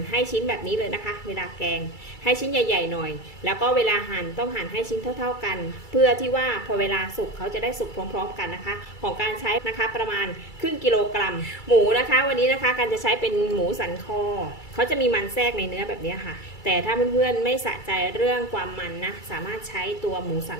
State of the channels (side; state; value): right; late; 2.3 ms